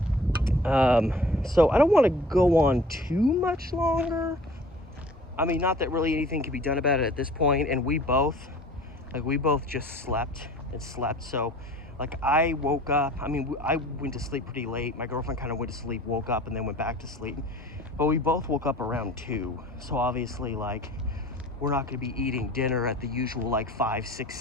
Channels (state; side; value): normal; both; correlation 0.47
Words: So I don't want to go on too much longer. I mean, not that really anything can be done about it at this point, and we both just slept and slept. So like, I woke up, I mean, I went to sleep pretty late. My girlfriend kind of went to sleep, woke up, and then went back to sleep. But we both woke up around 2. So obviously, like, we're not going to be eating dinner at the usual like 5, 6,